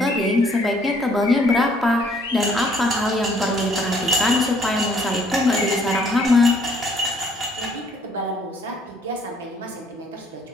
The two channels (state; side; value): normal; both; correlation 0.63